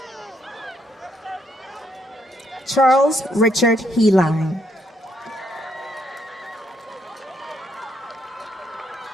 Charles Richard Heline.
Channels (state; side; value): normal; both; correlation 0.73